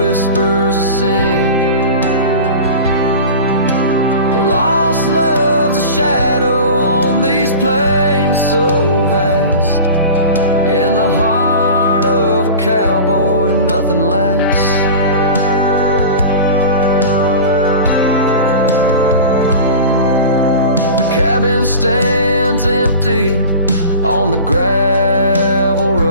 a sin. Lost love's a shadow on these plains so vast, in the heart of a cowboy nothing lasts. Cabin stands empty on the gravel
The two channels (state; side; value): inverted; both; correlation -0.35